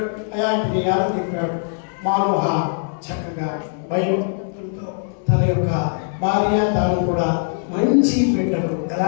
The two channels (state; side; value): silent; right; 65 dB below the other